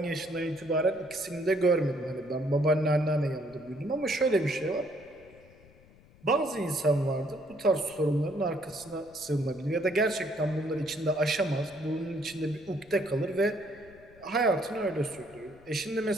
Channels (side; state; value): left; noise; rumble, 25 dB below the sound